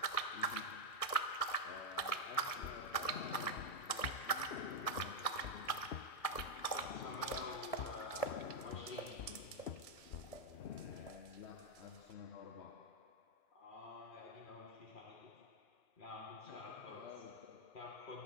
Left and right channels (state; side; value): late; right; 2.4 ms